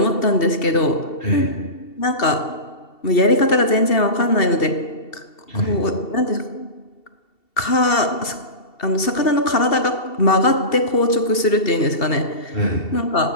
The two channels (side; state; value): right; late; 2.7 ms